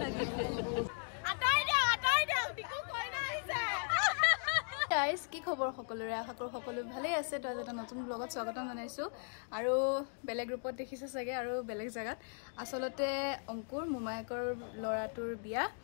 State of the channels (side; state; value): right; silent; 53 dB below the other